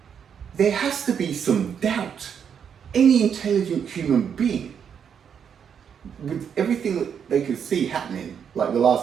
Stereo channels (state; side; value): quieter; left; 7.6 dB